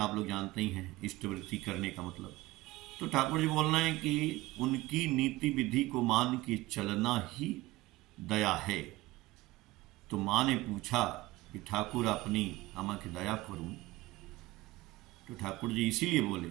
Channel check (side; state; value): left; quieter; 19.2 dB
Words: लोग जानते ही हैं इष्टवृत्ति करने का मतलब। तो ठाकुर जी बोल रहे हैं कि उनकी नीति विधि को मान के चलना ही दया है। तो माँ ने पूछा कि ठाकुर अपनी आमा की दया करूं, तो ठाकुर जी इसीलिए बोले